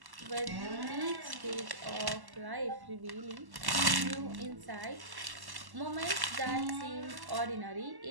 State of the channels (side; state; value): left; late; 1.1 ms